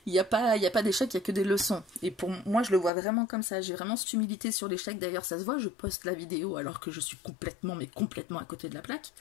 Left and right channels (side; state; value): right; drops out; at 2.9 s